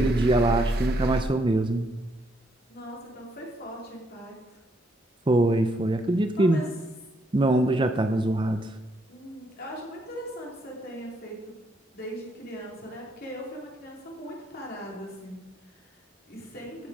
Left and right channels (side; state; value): both; normal; correlation 0.74